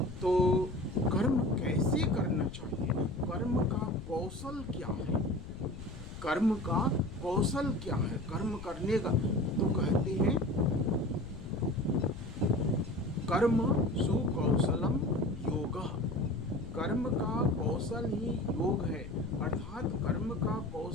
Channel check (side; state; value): left; noise; rumble, 12 dB below the sound